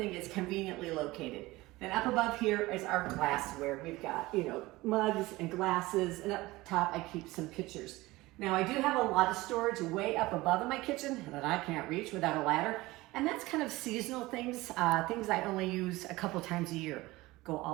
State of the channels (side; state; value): left; quieter; 19.8 dB